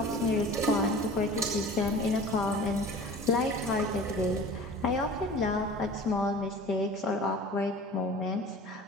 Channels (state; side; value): normal; both; correlation 0.41